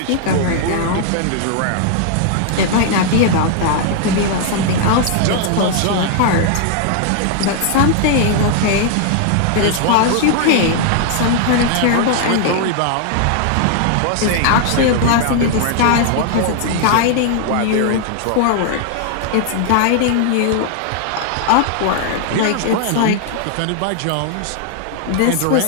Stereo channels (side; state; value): both; different; correlation 0.00